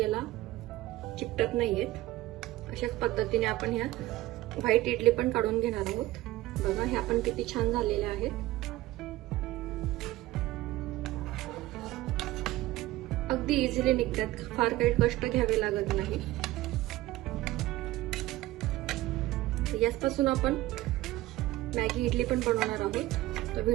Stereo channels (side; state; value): left; quieter; 16.9 dB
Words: चिकटत नाहीयेत. अशाच पद्धतीने आपण ह्या व्हाईट इडली पण काढून घेणार आहोत. बघा ह्या पण किती छान झालेल्या आहेत. अगदी इझिली निघतात, फार काही कष्ट घ्यावे लागत नाही. याचपासून आपण मॅगी इडली पण बनवणार आहोत. तर